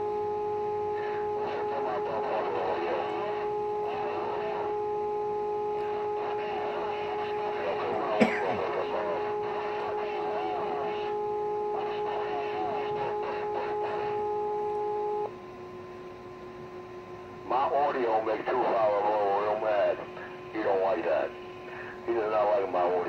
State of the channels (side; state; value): both; identical; correlation 1.00